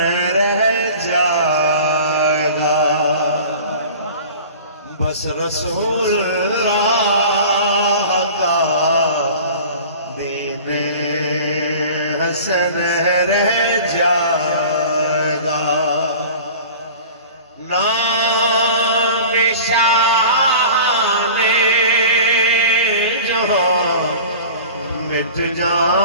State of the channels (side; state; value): both; inverted; correlation -0.40